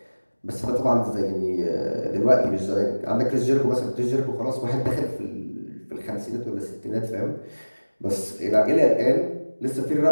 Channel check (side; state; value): both; inverted; correlation -1.00